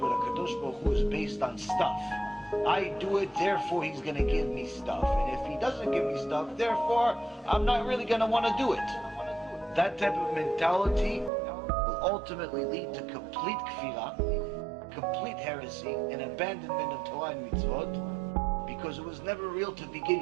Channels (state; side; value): drops out; left; at 11.3 s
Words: with HaKadosh Baruch Hu is based on stuff, I do it, therefore He's going to give me stuff. And if He doesn't give me stuff, therefore I'm not really going to want to do it. That type of mentality will ultimately lead to complete kfirah, complete heresy, and abandonment of Torah and mitzvot, because it was never real to